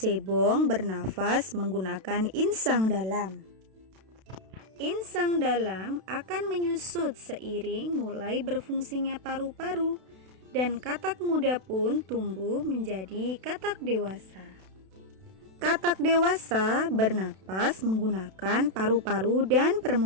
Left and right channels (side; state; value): left; late; 32 ms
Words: bernafas menggunakan insang dalam. Insang dalam akan menyusut seiring mulai berfungsinya paru-paru, dan katak muda pun tumbuh menjadi katak dewasa. Katak dewasa bernapas menggunakan paru-paru dan